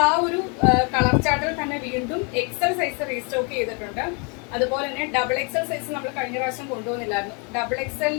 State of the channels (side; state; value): right; quieter; 35.0 dB